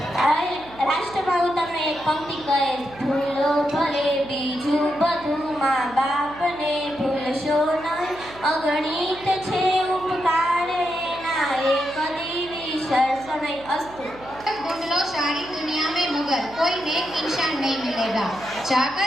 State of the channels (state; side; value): noise; right; hum, 19 dB below the sound